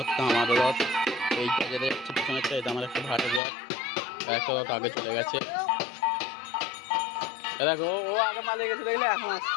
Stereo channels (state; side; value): drops out; right; at 3.4 s